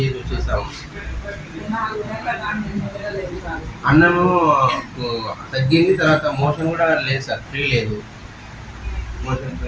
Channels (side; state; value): both; identical; correlation 1.00